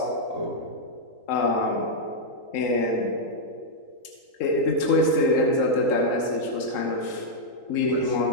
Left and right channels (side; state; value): right; late; 3.8 ms